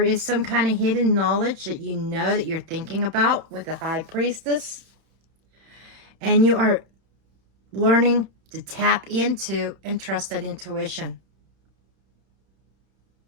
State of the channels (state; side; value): late; left; 31 ms